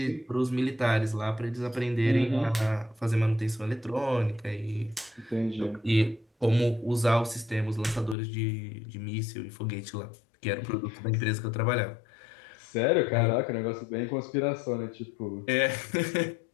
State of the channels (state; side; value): drops out; right; at 8.2 s